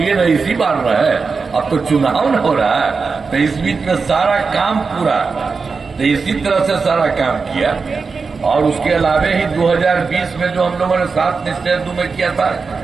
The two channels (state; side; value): quieter; left; 4.8 dB